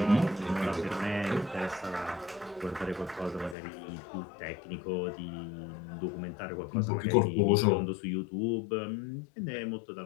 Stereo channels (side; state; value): right; drops out; at 3.6 s